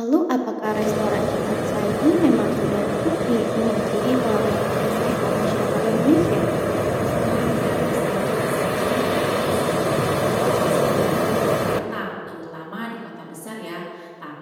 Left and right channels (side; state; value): both; identical; correlation 1.00